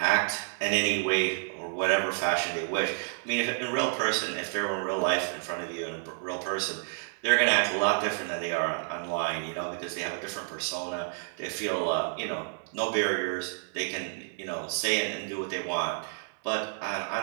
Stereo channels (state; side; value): silent; left; digital silence